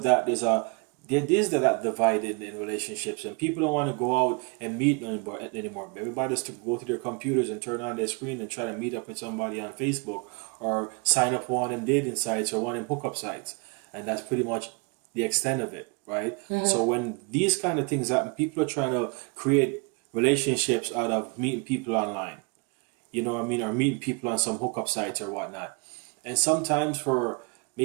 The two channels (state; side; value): quieter; left; 30.5 dB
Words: that, there is that divide in relationships, and people don't want to go out and meet anymore. Everybody just to go to their computers and turn on their screen and try to meet up with somebody on Facebook or sign up for one of them dating sites or one of them hookup sites, and that's pretty much the extent of it, right? Mm-hmm. So when these kind of things happen, people are trying to create relationships out of meeting people online. You know what I mean? Or meeting people on some hookup sites or whatnot. And sometimes for